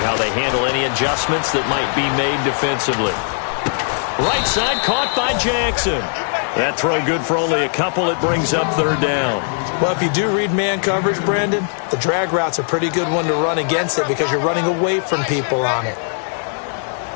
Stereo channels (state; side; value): silent; right; 57 dB below the other